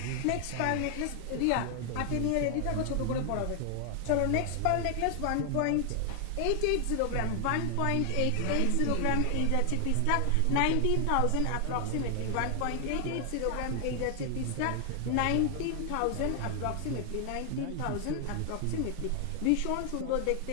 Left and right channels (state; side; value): different; both; correlation 0.00